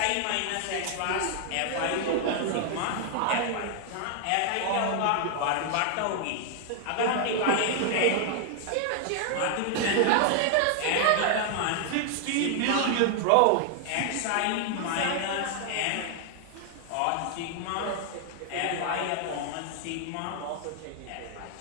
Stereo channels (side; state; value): both; different; correlation 0.00